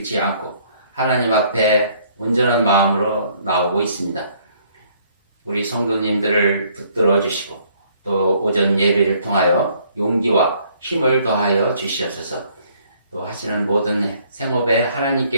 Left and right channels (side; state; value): both; inverted; correlation -0.63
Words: 않고 하나님 앞에 온전한 마음으로 나오고 있습니다. 우리 성도님들을 붙들어 주시고 또 오전 예배를 통하여 용기와 힘을 더하여 주시옵소서. 또 하시는 모든 생업에